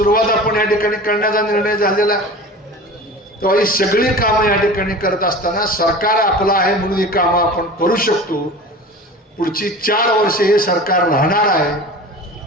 आपण या ठिकाणी करण्याचा निर्णय झालेला. तेव्हा ही सगळी कामं या ठिकाणी करत असताना सरकार आपलं आहे म्हणून ही कामं आपण करू शकतो. पुढची 4 वर्षे हे सरकार राहणार आहे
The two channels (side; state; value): both; normal; correlation 0.36